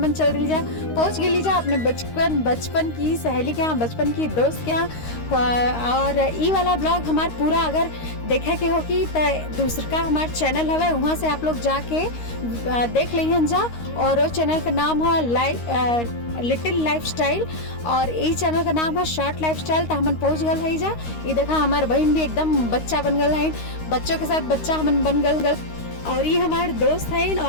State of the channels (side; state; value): right; late; 13 ms